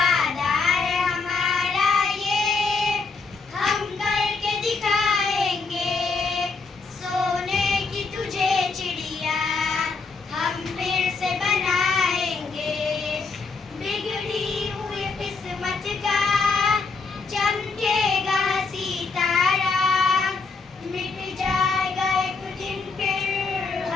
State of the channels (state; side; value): quieter; right; 4.4 dB